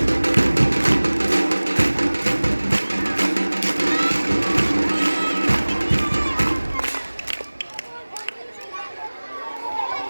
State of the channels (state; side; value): inverted; both; correlation -1.00